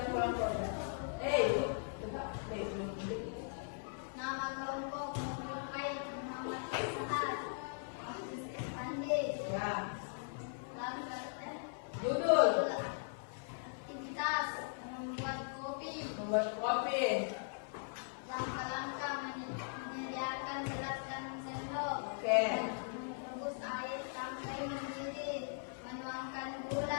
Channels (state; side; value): silent; right; 52 dB below the other